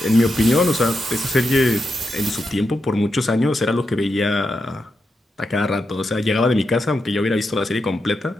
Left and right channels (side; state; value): both; normal; correlation 0.86